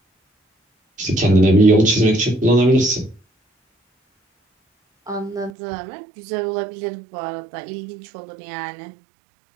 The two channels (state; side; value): drops out; left; at 5.5 s